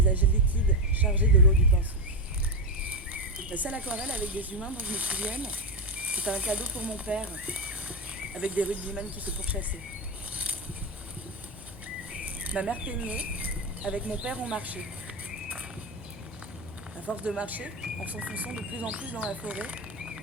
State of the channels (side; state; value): both; normal; correlation 0.11